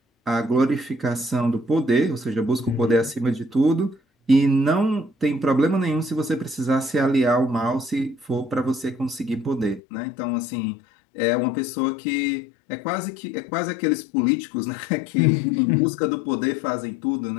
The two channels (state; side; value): drops out; right; at 9.8 s